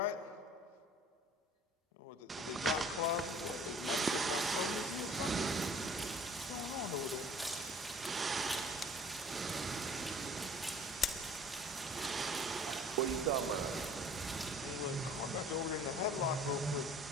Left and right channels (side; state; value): both; normal; correlation 0.51